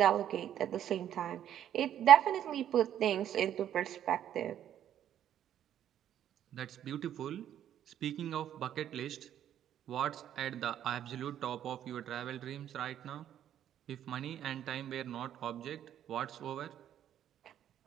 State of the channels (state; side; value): quieter; left; 10.6 dB